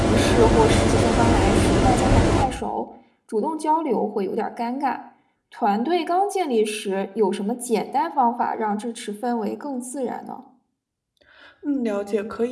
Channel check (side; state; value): both; identical; correlation 1.00